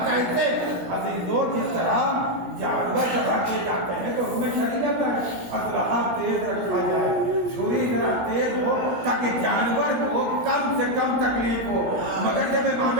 کہتے. عزیزوں جس طرح جانور جگہ کیے جاتے ہیں تو ہمیں شریعت ہے اسلحہ تیز رکھا جائے, چھری ذرا تیز ہو تاکہ جانور کو کم سے کم تکلیف ہو. مگر جب امام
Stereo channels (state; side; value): late; left; 17 ms